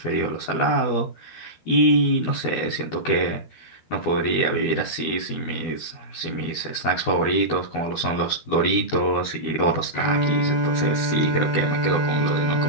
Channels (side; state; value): right; late; 12 ms